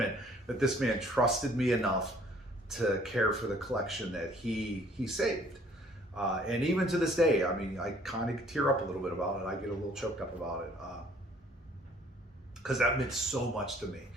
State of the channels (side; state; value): both; normal; correlation 0.58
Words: that this man trusted me enough to care for the collection that he saved. And even to this day, I mean, I kind of tear up a little bit about it. I get a little choked up about it, because that meant so much to me,